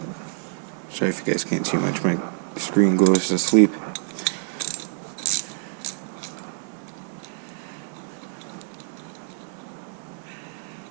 Sorry if you guys can't see much, my screen goes to sleep.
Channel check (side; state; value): left; silent; digital silence